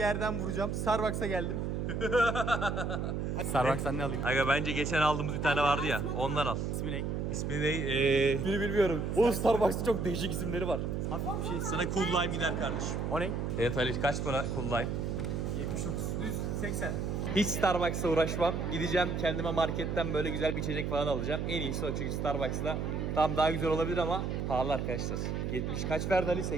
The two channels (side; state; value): right; noise; hum, 1 dB below the sound